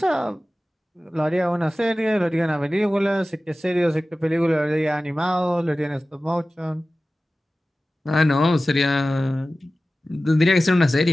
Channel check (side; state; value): both; normal; correlation 0.96